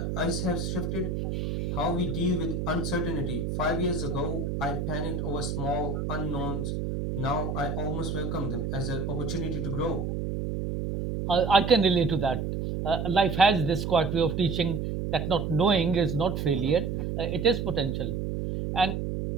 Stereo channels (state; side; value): noise; right; hum, 2 dB below the sound